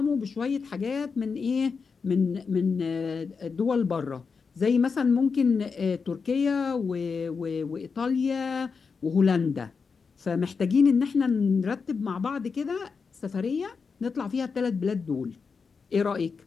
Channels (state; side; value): quieter; right; 5.3 dB